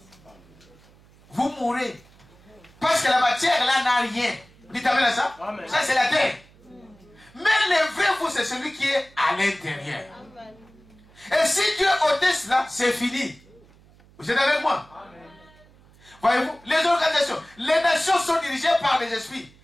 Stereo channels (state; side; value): noise; right; hum, 27 dB below the sound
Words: Vous mourrez. Parce que la matière là n'a rien. Dites amen à ça. Amen. Ça c'est la terre. Mais le vrai vous, c'est celui qui est à l'intérieur. Et si Dieu ôtait cela, c'est fini. Vous êtes avec moi? Voyez-vous, les organisations, les nations sont dirigées par les esprits.